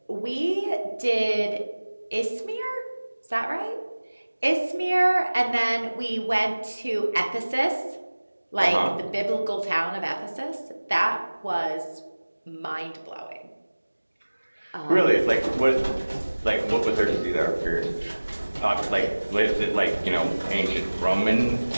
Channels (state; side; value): inverted; both; correlation -1.00